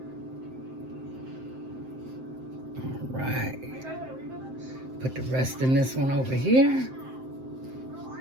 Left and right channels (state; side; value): late; left; 7.7 ms